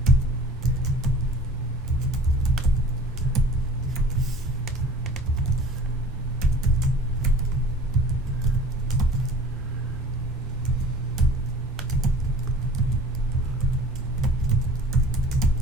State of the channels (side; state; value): both; normal; correlation 0.45